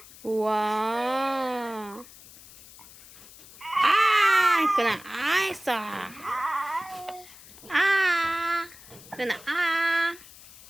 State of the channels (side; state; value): left; noise; hiss, 20 dB below the sound